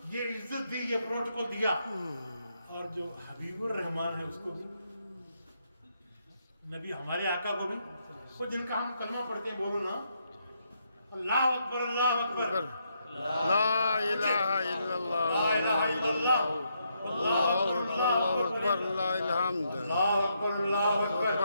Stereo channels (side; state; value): both; inverted; correlation -0.78